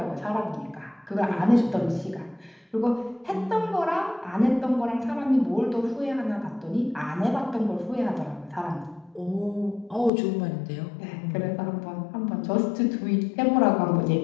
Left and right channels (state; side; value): drops out; right; at 10.1 s